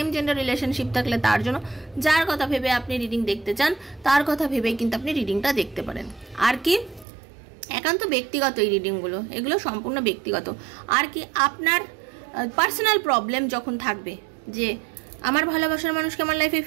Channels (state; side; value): drops out; left; at 7.1 s